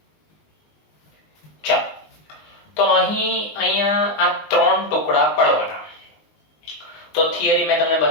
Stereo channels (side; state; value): right; late; 19 ms